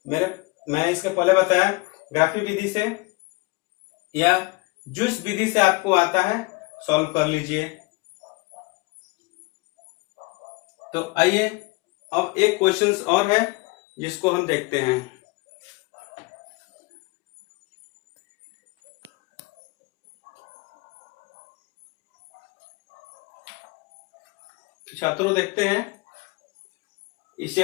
मैं इसके पहले बताया ग्राफिक विधि से या जूस विधि से आपको आता है, सॉल्व कर लीजिए। तो आइए अब एक क्वेश्चन और है जिसको हम देखते हैं। छात्रों देखते हैं, इस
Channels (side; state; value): right; quieter; 25.6 dB